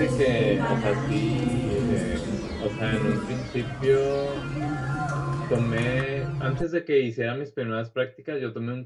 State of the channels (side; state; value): both; identical; correlation 1.00